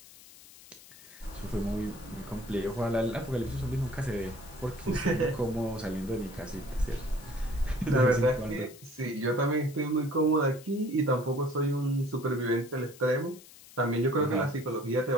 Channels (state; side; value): noise; left; hiss, 20 dB below the sound